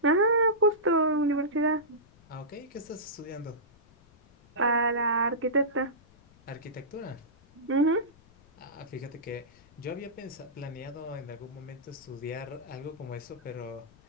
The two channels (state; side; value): noise; left; rumble, 27 dB below the sound